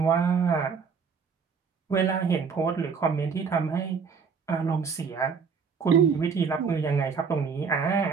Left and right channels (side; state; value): left; quieter; 5.8 dB